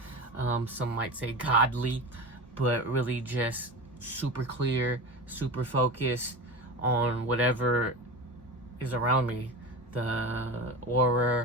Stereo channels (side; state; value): both; normal; correlation 0.27